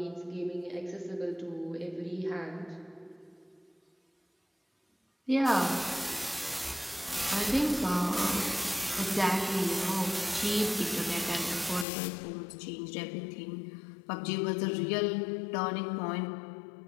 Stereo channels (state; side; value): drops out; right; at 11.9 s